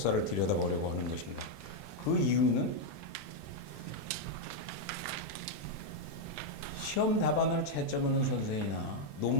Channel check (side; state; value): both; normal; correlation 0.00